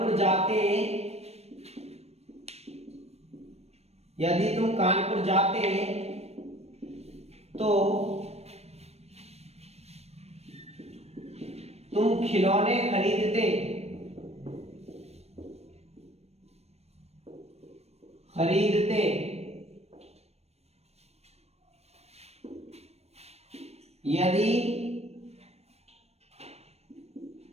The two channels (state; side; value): late; left; 0.31 ms